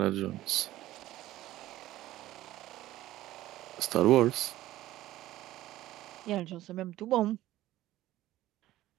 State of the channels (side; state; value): left; quieter; 15.3 dB